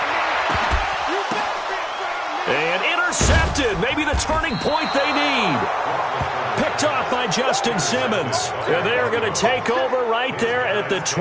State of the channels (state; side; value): identical; both; correlation 1.00